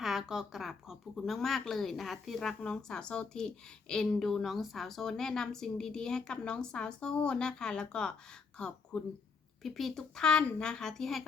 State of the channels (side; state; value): right; quieter; 4.9 dB